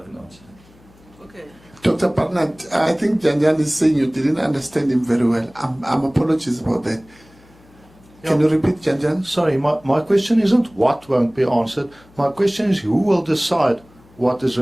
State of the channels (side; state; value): left; noise; hum, 28 dB below the sound